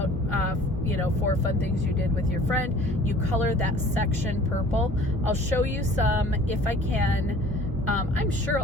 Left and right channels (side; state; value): both; normal; correlation 0.51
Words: 4 fun things you did with your friend, you color that section purple. I'll show you some if I can. I'm sure